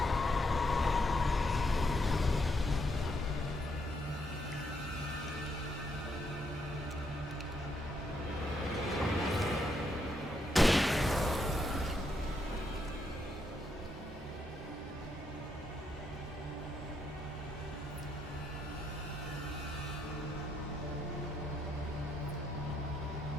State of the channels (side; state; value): both; normal; correlation 0.77